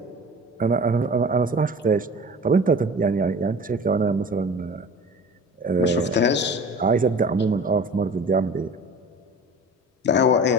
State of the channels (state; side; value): normal; both; correlation 0.39